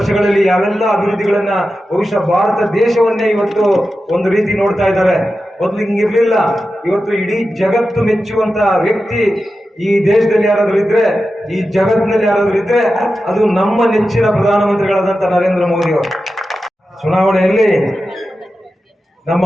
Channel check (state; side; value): normal; both; correlation 0.92